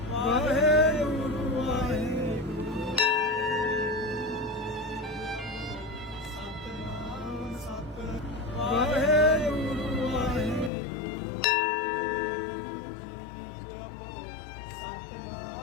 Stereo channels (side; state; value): right; drops out; at 10.7 s